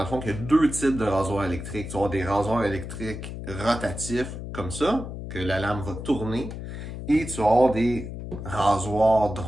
le fond, qu'il y a deux types de rasoirs électriques. Tu vas avoir des rasoirs électriques rotatifs, comme ça, que la lame va tourner, et tu vas avoir des rasoirs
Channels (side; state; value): left; noise; hum, 8 dB below the sound